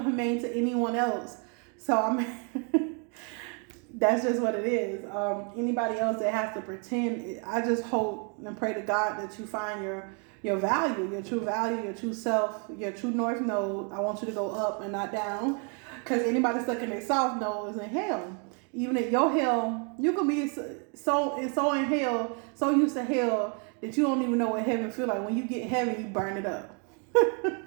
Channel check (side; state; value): left; quieter; 38.1 dB